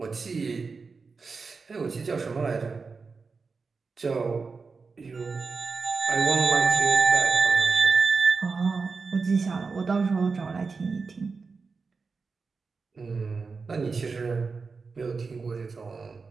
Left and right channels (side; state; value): left; quieter; 4.6 dB